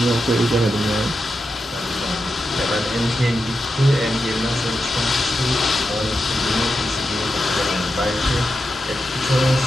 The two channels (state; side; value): normal; both; correlation 0.88